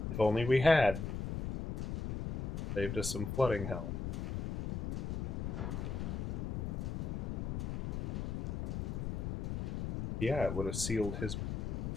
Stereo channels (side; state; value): left; noise; rumble, 2 dB below the sound